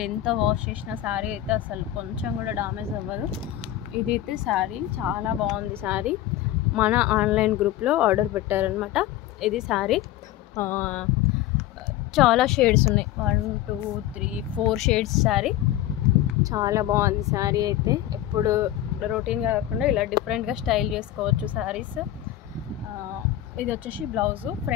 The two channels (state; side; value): quieter; right; 13.2 dB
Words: ఎంత వాష్ చేసిన శారీ అయితే అసలు కొంచెం కూడా డామేజ్ అవ్వదు. ఇదైతే శారీ చాలా బాగుంది. శారీ మన ఆన్లైన్ గ్రూప్లో ఆర్డర్ పెట్టారనమాట. ఇది శారీ చాలా షేడ్స్ ఉన్నాయి, 1 2 3 4 షేడ్స్ శారీ. చాలా బాగుంది శారీ అయితే. ఎప్పుడు రొటీన్గా కాకుండా ఇలా డిఫరెంట్గా స్టైల్ చేసుకోవచ్చు శారీస్. ఇది వచ్చేసి బ్లౌజు,